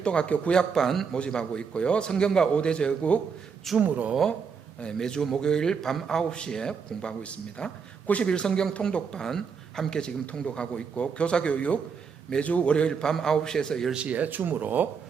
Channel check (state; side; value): quieter; left; 6.0 dB